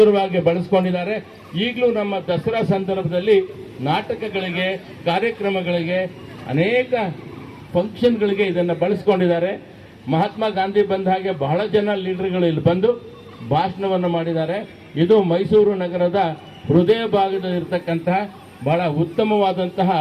ಬಳಸ್ಕೊಂಡಿದ್ದಾರೆ. ಈಗಲೂ ನಮ್ಮ ದಸರಾ ಸಂದರ್ಭದಲ್ಲಿ ನಾಟಕಗಳಿಗೆ, ಕಾರ್ಯಕ್ರಮಗಳಿಗೆ, ಅನೇಕ ಫಂಕ್ಷನ್ಗಳಿಗೆ ಇದನ್ನು ಬಳಸ್ಕೊಂಡಿದ್ದಾರೆ. ಮಹಾತ್ಮ ಗಾಂಧಿ ಬಂದ ಹಾಗೆ ಬಹಳ ಜನ ಲೀಡರ್ಗಳು ಇಲ್ಲಿ ಬಂದು ಭಾಷಣವನ್ನು ಮಾಡಿದ್ದಾರೆ. ಇದು ಮೈಸೂರು ನಗರದ ಹೃದಯ ಭಾಗದಲ್ಲಿರ್ತಕ್ಕಂತಹ ಬಹಳ ಉತ್ತಮವಾದಂತಹ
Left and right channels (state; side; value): identical; both; correlation 1.00